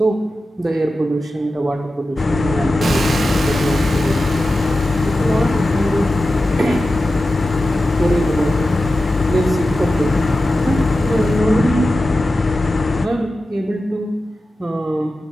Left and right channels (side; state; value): both; normal; correlation 0.93